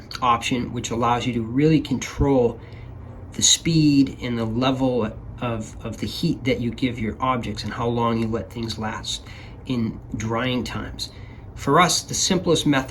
option, which allows you to really control the speed and the level of the heat that you give your objects and how long you let things last in drying times. For us, the simplest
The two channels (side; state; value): both; identical; correlation 1.00